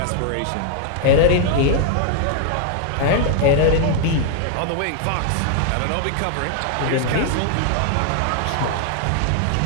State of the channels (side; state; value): both; different; correlation 0.00